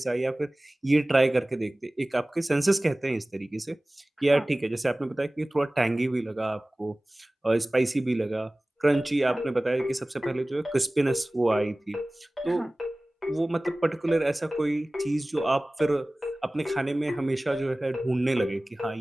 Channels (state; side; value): normal; both; correlation 0.98